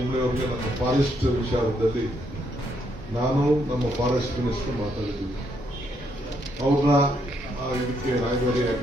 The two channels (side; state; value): both; normal; correlation 0.75